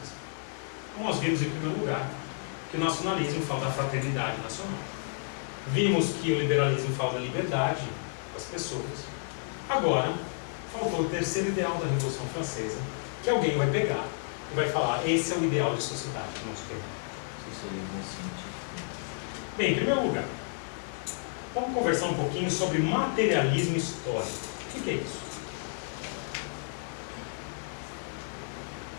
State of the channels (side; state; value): right; silent; digital silence